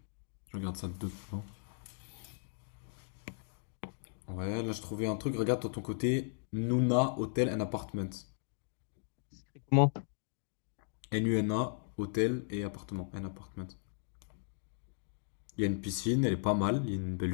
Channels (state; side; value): silent; right; digital silence